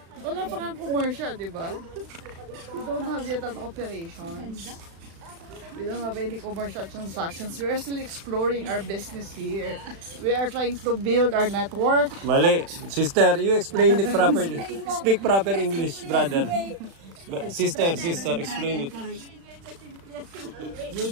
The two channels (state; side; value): late; left; 36 ms